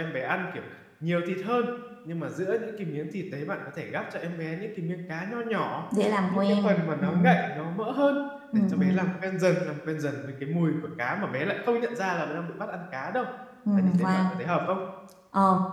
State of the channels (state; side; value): identical; both; correlation 1.00